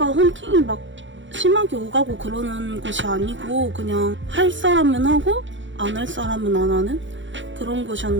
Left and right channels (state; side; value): late; left; 0.55 ms